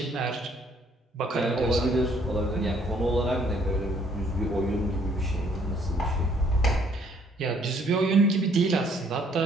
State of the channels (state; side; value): normal; both; correlation 0.64